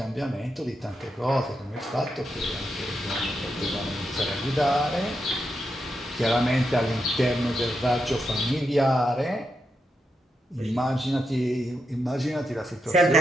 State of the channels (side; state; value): both; normal; correlation 0.85